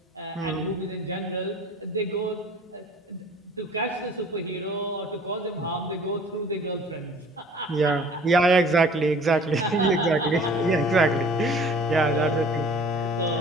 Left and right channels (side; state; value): both; normal; correlation 0.49